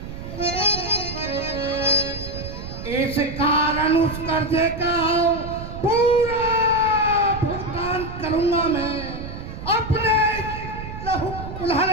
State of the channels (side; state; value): right; noise; rumble, 9 dB below the sound